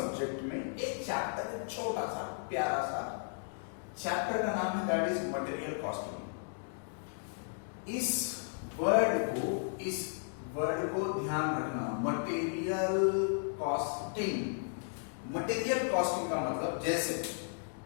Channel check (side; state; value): right; silent; digital silence